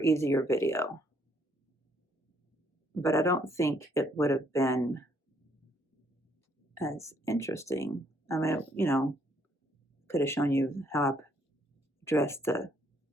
easier video. But I don't think it would have been as interesting. I mean, you know, could have shown you how I dressed the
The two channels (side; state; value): both; normal; correlation 0.69